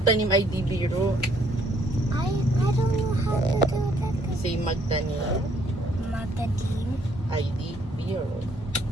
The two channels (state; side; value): normal; both; correlation 0.66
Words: ay di biro. I don't know how to do that. Say magtanim Matadim, ay di biro.